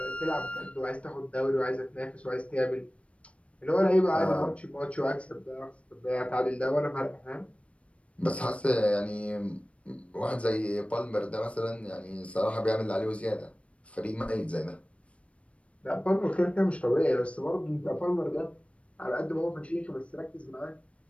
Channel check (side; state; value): right; late; 0.062 ms